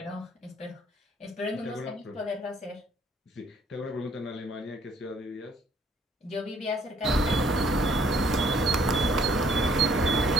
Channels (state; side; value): normal; both; correlation 0.62